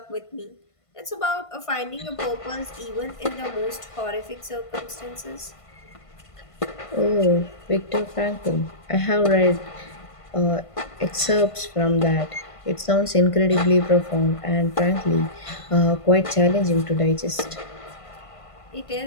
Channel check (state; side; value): late; right; 1.5 ms